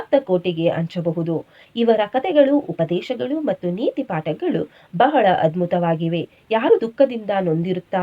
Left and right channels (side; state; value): both; identical; correlation 1.00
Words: ಕೋಟೆಗೆ ಹಂಚಬಹುದು. ಇವರ ಕಥೆಗಳು, ಉಪದೇಶಗಳು ಮತ್ತು ನೀತಿ ಪಾಠಗಳು ಬಹಳ ಅದ್ಭುತವಾಗಿವೆ. ಯಾರು ದುಃಖದಿಂದ